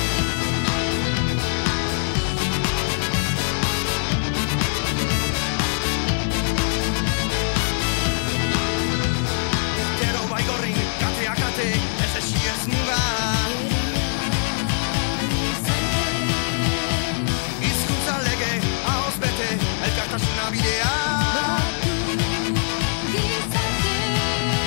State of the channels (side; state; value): right; silent; digital silence